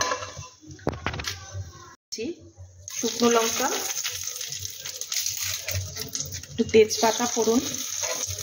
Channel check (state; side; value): identical; both; correlation 1.00